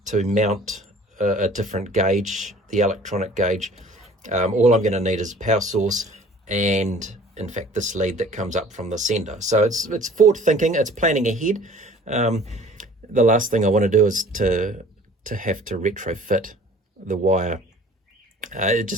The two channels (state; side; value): normal; both; correlation 0.49